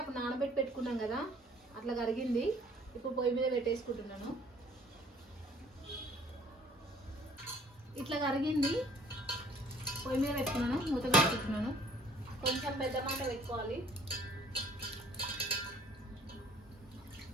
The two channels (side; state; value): both; normal; correlation 0.57